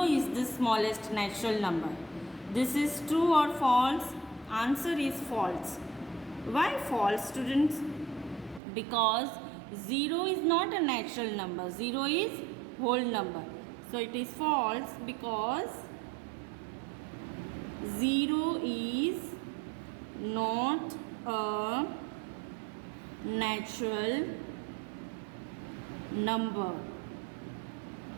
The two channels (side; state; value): left; drops out; at 8.6 s